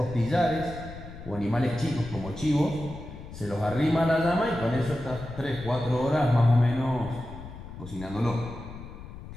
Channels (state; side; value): noise; left; rumble, 13 dB below the sound